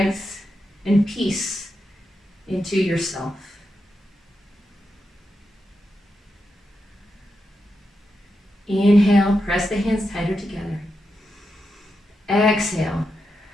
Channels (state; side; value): normal; both; correlation 0.87